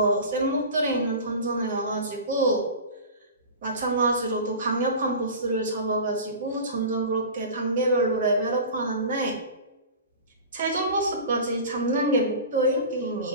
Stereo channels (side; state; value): both; inverted; correlation -0.34